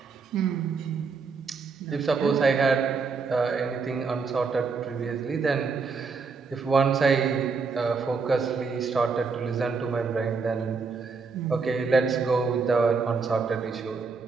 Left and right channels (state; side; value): quieter; left; 4.8 dB